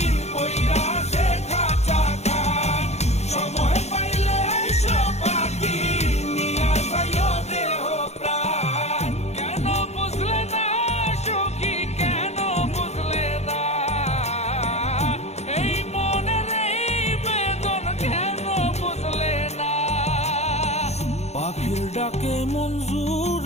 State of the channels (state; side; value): late; right; 0.32 ms